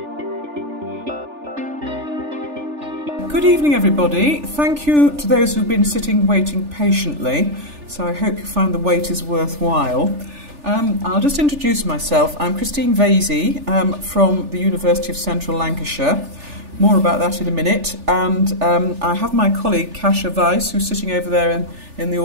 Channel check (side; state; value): left; late; 3.4 ms